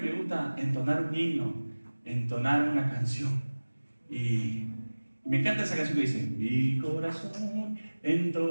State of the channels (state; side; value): inverted; both; correlation -1.00